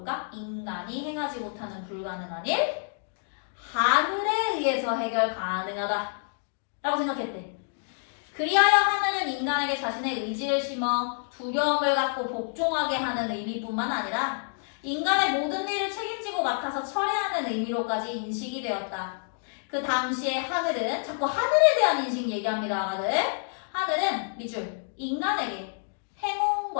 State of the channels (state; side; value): silent; right; digital silence